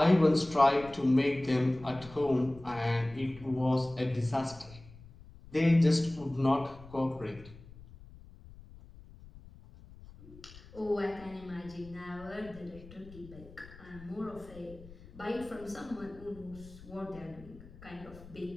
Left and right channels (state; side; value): noise; left; rumble, 19 dB below the sound